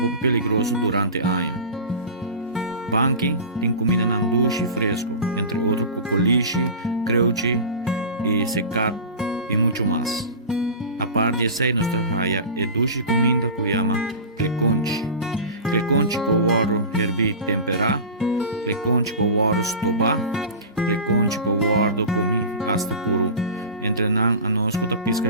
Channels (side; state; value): both; inverted; correlation -0.32